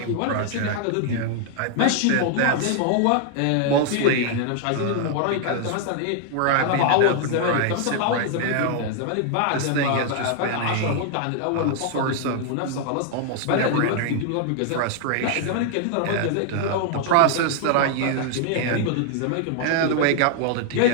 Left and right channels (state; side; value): different; both; correlation 0.00